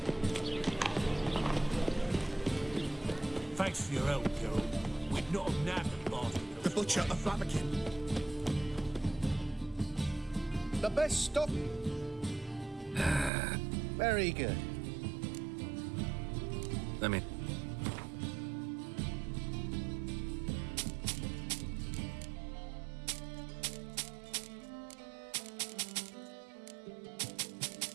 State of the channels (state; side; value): drops out; left; at 13.3 s